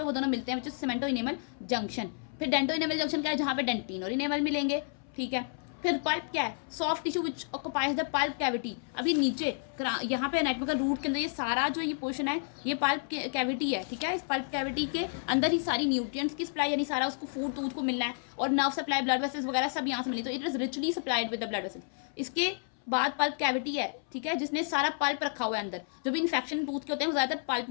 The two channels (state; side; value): silent; right; 57 dB below the other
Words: वो दोनों मिलते हैं, which is cemento enamel junction. फिर डेंटो इनेमल जंक्शन क्या है, जहाँ पे डेंटिन और इनेमल मिलेंगे, ठीक है। फिर पल्प क्या है, soft tissue which occupies the pulp cavity. अभी नीचे यहाँ पे एनाटमिकल रूट के अंदर ये सारा जो ये पोर्शन है ये पल्प कैविटी है, ठीक है। इस पल्प कैविटी के अंदर ही सारी न्यूट्रिएंट्स की सप्लाई, यानी सारा उसको फूड टूथ को मिलना है, और नर्व सप्लाई, ब्लड वेसल्स वगैरह सब यहाँ से मिले, तो it is richly supplied with the blood vessels. इसके बाद पल्प कैविटी है, ठीक है, जिसने सारा पल्प रखा हुआ है अंदर। जो भी इन्फेक्शन टूथ के होते हैं वो ज्यादातर पल्प